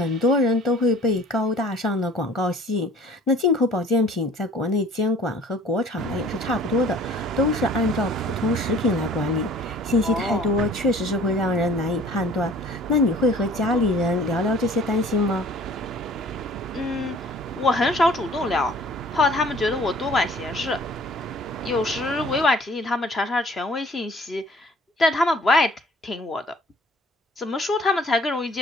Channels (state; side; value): normal; both; correlation 0.51